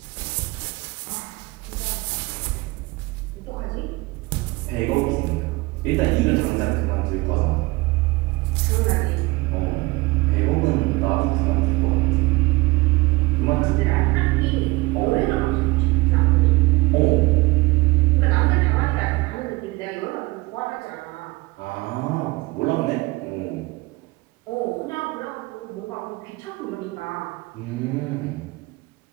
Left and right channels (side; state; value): left; quieter; 22.6 dB